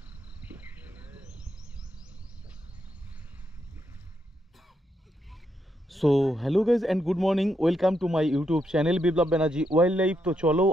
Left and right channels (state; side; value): normal; both; correlation 0.80